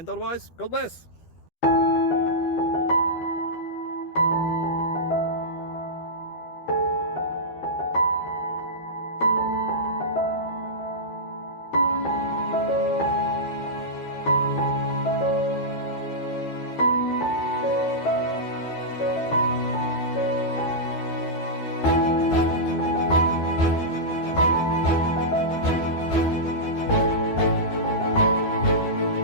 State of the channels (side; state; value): right; late; 12 ms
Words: otherwise, God bless.